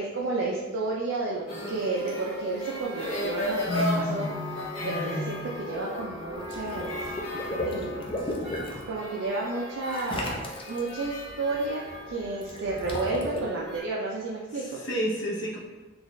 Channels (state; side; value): normal; both; correlation 0.14